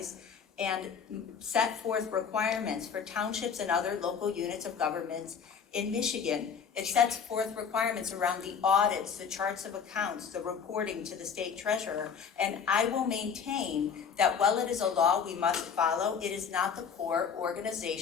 and set forth requirements for townships and other local units of governments in Michigan. It sets forth requirements around the audits, the charts of accounts, the reporting to the state treasurer. And I will maintain that while it is a law we must follow, it is not the core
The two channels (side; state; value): right; quieter; 6.7 dB